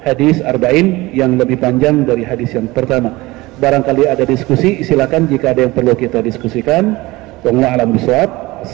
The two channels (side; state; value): left; quieter; 20.6 dB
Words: hadis arba'in yang lebih panjang dari hadis yang pertama. Barangkali ada diskusi, silakan jika ada yang perlu kita diskusikan. Wallahu a'lam bishawab.